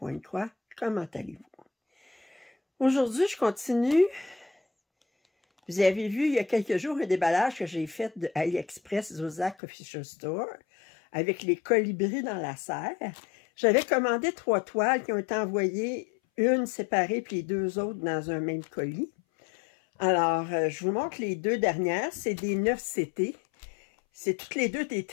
Comment allez-vous? Aujourd'hui, je continue. Vous avez vu il y a quelques jours un déballage que j'ai fait de AliExpress Zodiac Official Store avec les colibris dans la serre. J'avais commandé 3 toiles qui ont été envoyées, une séparée puis les 2 autres dans un même colis. Alors, je vous montre les 2 dernières. C'est des 9CT. C'est toutes les 2 des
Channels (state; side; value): drops out; right; at 9.6 s